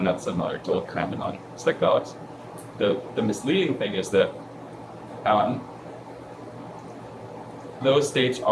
that's similar to what happened on psychedelics. The misleading thing is that those states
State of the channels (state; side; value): identical; both; correlation 1.00